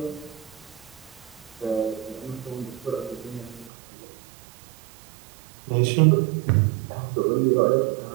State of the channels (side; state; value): left; drops out; at 3.7 s